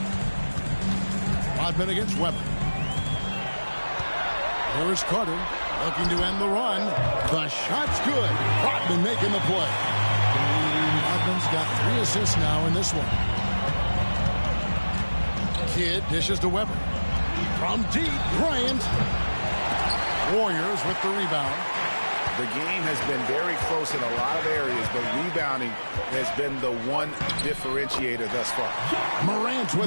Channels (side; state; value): both; inverted; correlation -1.00